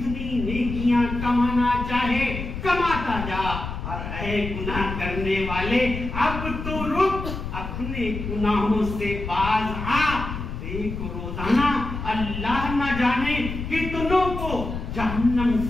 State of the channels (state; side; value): noise; left; rumble, 6 dB below the sound